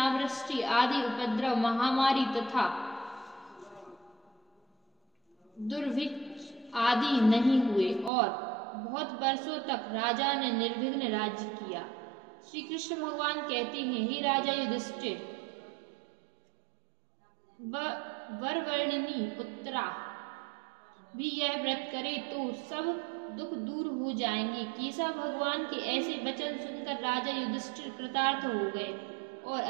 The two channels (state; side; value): drops out; left; at 8.1 s